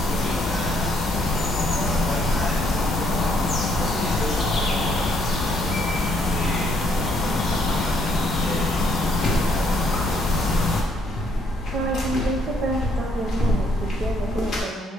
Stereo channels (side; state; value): both; normal; correlation 0.69